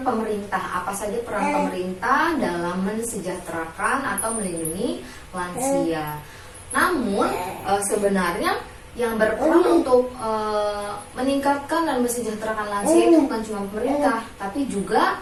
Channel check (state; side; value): identical; both; correlation 1.00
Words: pemerintah. Apa saja peran pemerintah dalam mensejahterakan atau melindungi lansia. Namun sebenarnya yang berperan untuk meningkatkan dan mensejahterakan lansia itu bukan cuma pemerintah, tapi juga